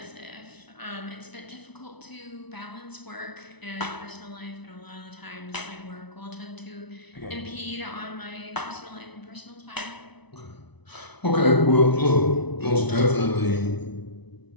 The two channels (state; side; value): late; right; 0.99 ms